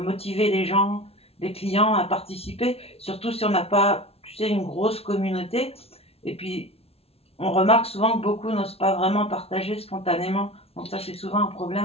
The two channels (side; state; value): right; late; 0.29 ms